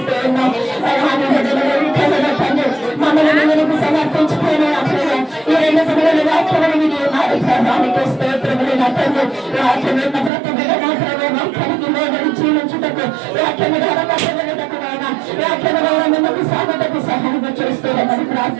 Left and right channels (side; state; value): left; drops out; at 10.3 s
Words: ఉన్నాం. మమ్మల్ని నీకు సమర్పించుకునే ఈ 2 దినాల వాక్యములు వినియోగానికి స్తోత్రములు తండ్రి. వాక్యమున్న ప్రతి బిడ్డ మాత్రమే వాక్యానికి లోబడి జీవించుటకు వాక్యము ద్వారా కట్టబడుటకునైనా వాక్యము ద్వారా మిమ్మల్ని సాగుటకు సహాయం చేస్తున్నామని